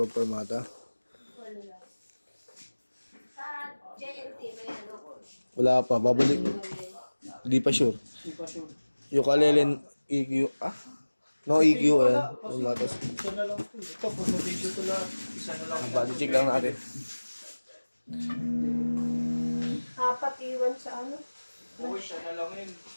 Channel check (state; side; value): inverted; both; correlation -1.00